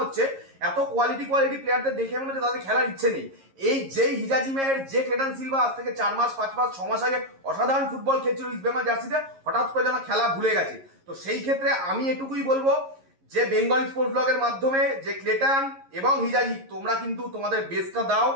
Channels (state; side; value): late; left; 11 ms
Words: হচ্ছে, এত কোয়ালিটি প্লেয়ারদের দেখে মনে হচ্ছে তাদের খেলার ইচ্ছে নেই। এই যেই হিজাজি মেহের, যে ক্লেটন সিলভা আজ থেকে 4 মাস 5 মাস 6 মাস আগে অসাধারণ ফুটবল খেলছিল ইস্ট বেঙ্গল জার্সিতে, হঠাৎ করে যেন খেলা ভুলে গেছে। তো সেই ক্ষেত্রে আমি এটুকুই বলবো যে বেঙ্গল স্পোর্টস ব্লগের মাধ্যমে যে ক্লেটন এবং হিজাজি, তোমরা কিন্তু তোমাদের বেস্টটা দাও।